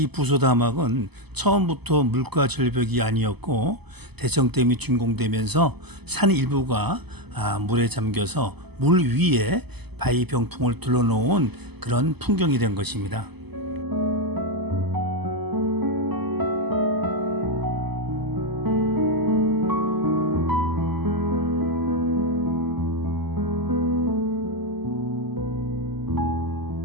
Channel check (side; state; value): left; late; 0.99 ms